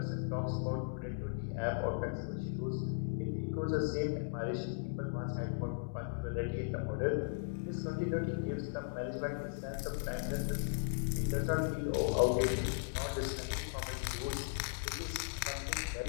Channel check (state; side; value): silent; right; digital silence